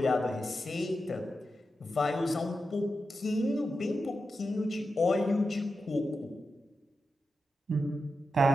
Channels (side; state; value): both; normal; correlation 0.89